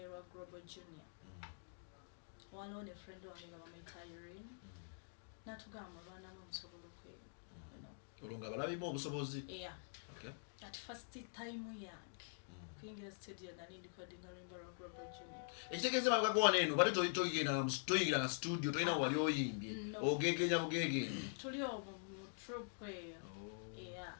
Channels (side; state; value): right; silent; digital silence